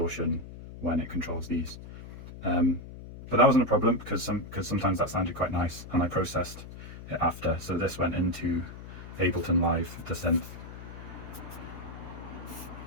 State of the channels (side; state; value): left; noise; hum, 13 dB below the sound